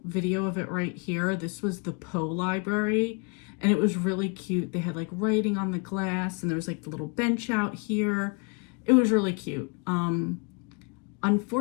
video of it right here. This was the Poe Library, and it was really cute. They had like writing on the glass, and there was like the little bench out here. It was really cute.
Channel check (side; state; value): right; quieter; 33.1 dB